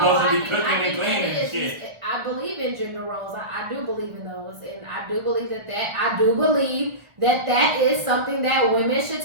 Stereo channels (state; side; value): late; left; 1.4 ms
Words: to be cooking and cleaning and shit. I believe in gender roles. I do believe in those, and I do believe that is something that women should